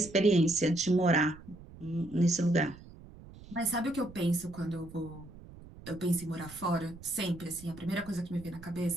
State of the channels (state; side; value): noise; right; rumble, 18 dB below the sound